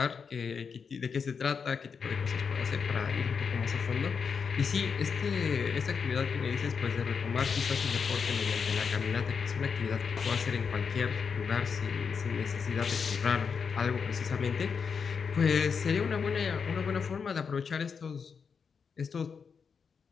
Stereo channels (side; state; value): right; quieter; 6.0 dB